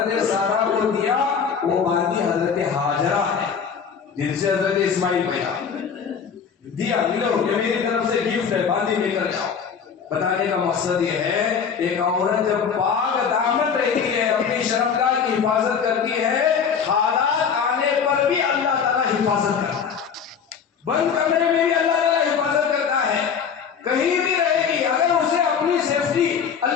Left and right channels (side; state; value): right; quieter; 6.7 dB